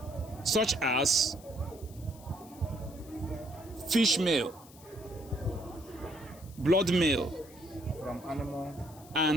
such as fish meal, blood meal, from animal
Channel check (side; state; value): left; noise; hiss, 22 dB below the sound